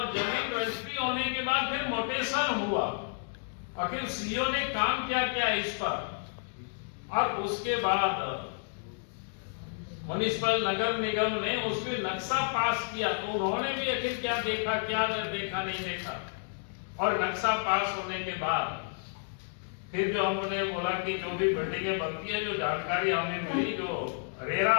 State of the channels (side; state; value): right; silent; digital silence